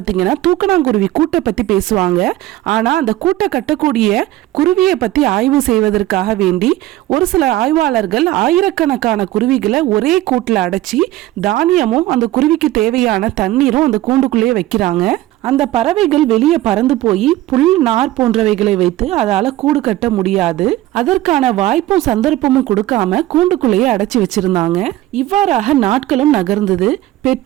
தூக்கணாங்குருவி கூட்டை பற்றி பேசுவாங்க. ஆனால் அந்த கூட்டை கட்டக்கூடிய குருவியை பற்றி ஆய்வு செய்வதற்காக வேண்டி ஒரு சில ஆய்வாளர்கள் ஆயிரக்கணக்கான குருவிகளை ஒரே கூட்டில் அடைச்சி தானியமும் அந்த குருவிக்கு தேவையான தண்ணீரும் அந்த கூண்டுக்குள்ளேயே வைக்கிறாங்க. அந்த பறவைகள் வெளியே பறந்து போய் புல் நார் போன்றவைகளை வைத்து அதால கூடு கட்ட முடியாது. அதற்கான வாய்ப்பும் சந்தர்ப்பமும் கொடுக்காம கூண்டுக்குள்ளேயே அடைச்சி வச்சிருந்தாங்க. இவ்வாறாக நாட்களும் நகர்ந்தது.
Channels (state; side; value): quieter; left; 15.7 dB